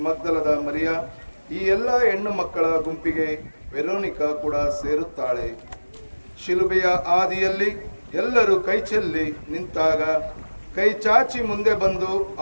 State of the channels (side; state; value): both; inverted; correlation -1.00